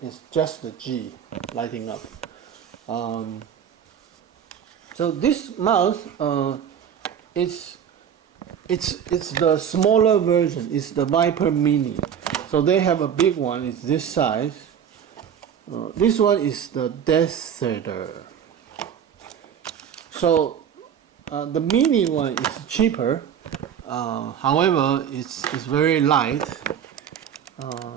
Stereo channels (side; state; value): left; quieter; 8.4 dB